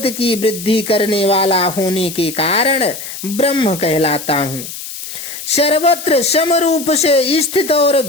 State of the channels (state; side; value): noise; left; hiss, 10 dB below the sound